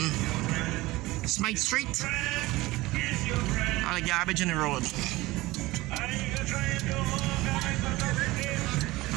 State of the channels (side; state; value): left; quieter; 19.7 dB